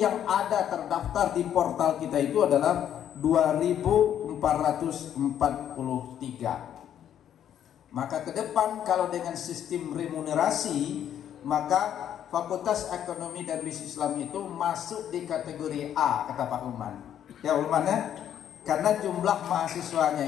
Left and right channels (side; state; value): right; quieter; 10.0 dB